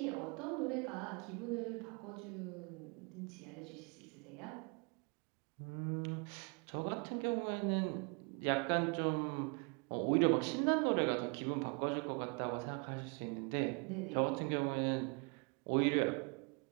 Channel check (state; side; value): quieter; left; 33.9 dB